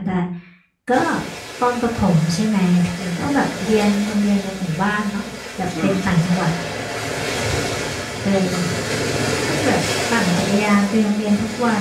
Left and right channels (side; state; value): both; identical; correlation 1.00